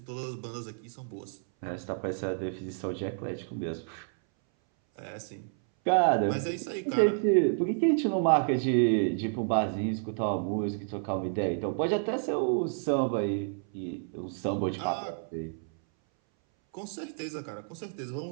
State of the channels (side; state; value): left; silent; 58 dB below the other